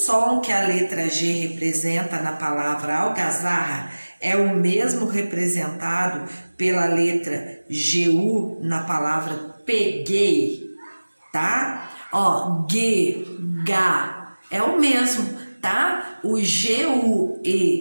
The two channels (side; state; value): both; inverted; correlation -1.00